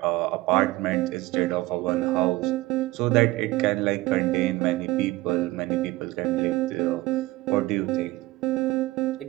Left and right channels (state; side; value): quieter; left; 19.1 dB